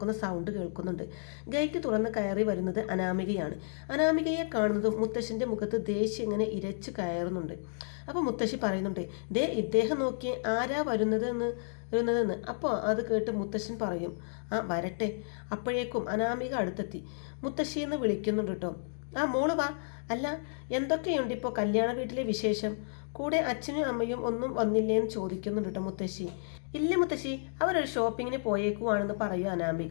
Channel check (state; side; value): silent; right; digital silence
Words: സൗണ്ട് കേൾക്കുന്നുണ്ട്. ഗേറ്റ് തുറന്ന് കയറി വരുന്നത് അനാമികയാണ്. അനാമികയെ കാണുന്നതും മുത്തശ്ശൻ്റെ മുഖത്ത് ദേഷ്യം ഇങ്ങനെ ഇരച്ചു കയറുന്നുണ്ട്. അപ്പോൾ മുത്തശ്ശി പറയുന്നുണ്ട്, ദേ ഇദ്ദേഹം നോക്കിയേ ആരാ വരുന്നതെന്ന്. അപ്പോൾ അത് കേട്ട് മുത്തശ്ശൻ പറയും, ആ വരട്ടെ. അപ്പോഴേക്കും അനാമിക അടുത്തെത്തി മുത്തശ്ശിയെന്ന് വിളിക്കുന്നുണ്ട് കേട്ടോ. ആ മോള് വാ. അല്ല, എന്തൊക്കെയുണ്ട് ഇപ്പോൾ കല്യാണ വീട്ടിലെ വിശേഷം? കൂടെ അച്ഛനും അമ്മയും ഒന്നും വന്നില്ലേന്ന് ചോദിക്കുന്നുണ്ട് കേട്ടോ മുത്തശ്ശി. ഇല്ല മുത്തശ്ശി, അവരൊരു ഷോപ്പിങ്ങിന് പോയേക്കുവാണെന്ന് പറയൂ